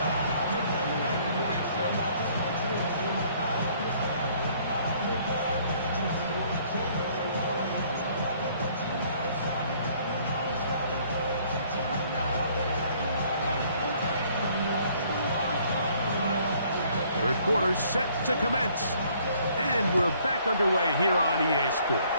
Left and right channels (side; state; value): both; inverted; correlation -0.61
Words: Third quarter set to commence. And we're back underway here on EA Sports.